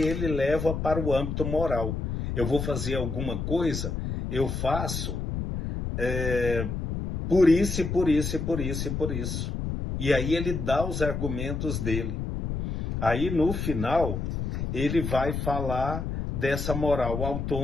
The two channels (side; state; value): left; noise; rumble, 3 dB below the sound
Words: leva para o âmbito moral. Eu vou fazer alguma coisa, eu faço por isso, e por isso, e por isso, e por isso. E aí ele dá os argumentos dele. Aí no final, ele vai falar dessa moral